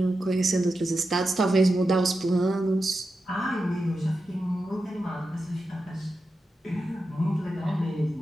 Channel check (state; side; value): normal; both; correlation 0.90